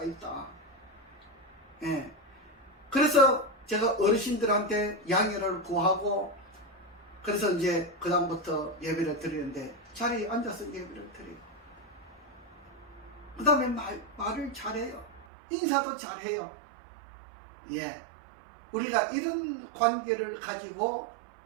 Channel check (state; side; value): drops out; left; at 15.2 s